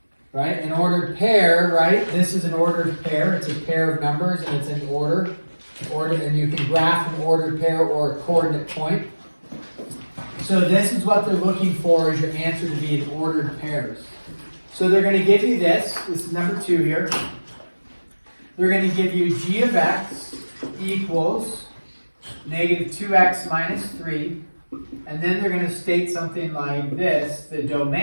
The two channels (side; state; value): both; inverted; correlation -1.00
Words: Right? An ordered pair, right? This is an ordered pair. It's a pair of numbers and it's in order. And you can graph an ordered pair or a coordinate point. So this is what they're looking for as your answer to be in ordered pairs. So they're going to give you this. This is number 2 here. They're going to give you g of x equals negative 2x minus 3. And then they're going to state something like this. The